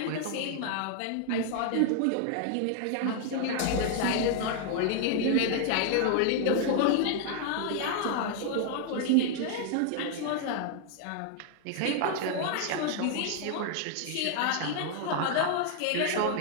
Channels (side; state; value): both; different; correlation 0.00